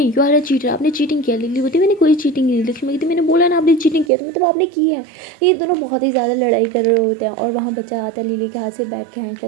यू आर अ चीटर, आपने चीटिंग किया। लिली बोलती मैंने कोई चीटिंग नहीं। लक्ष्मी कहती मैंने बोला ना आपने चीटिंग किया तो मतलब आपने की है। ये दोनों बहुत ही ज़्यादा लड़ाई कर रहे होते हैं और वहाँ बच्चा आता है लिली के हाथ से बैठ के खींचता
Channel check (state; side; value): drops out; left; at 4.1 s